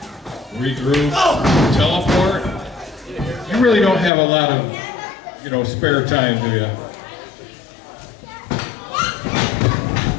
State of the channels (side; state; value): right; drops out; at 4.1 s